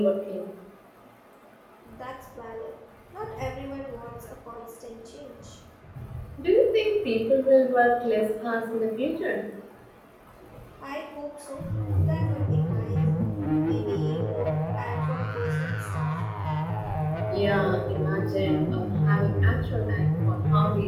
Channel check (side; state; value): both; identical; correlation 1.00